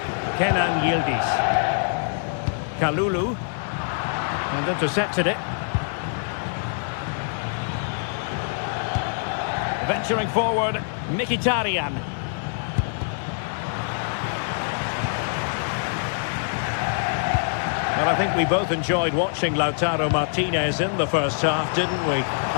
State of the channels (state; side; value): silent; right; digital silence